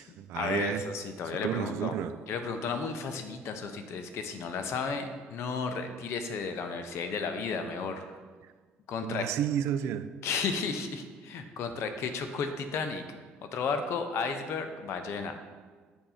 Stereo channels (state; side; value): normal; both; correlation 0.43